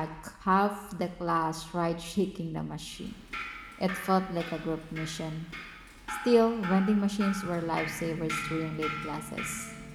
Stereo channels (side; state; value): both; identical; correlation 1.00